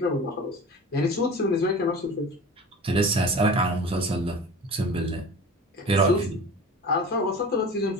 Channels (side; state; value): both; normal; correlation 0.37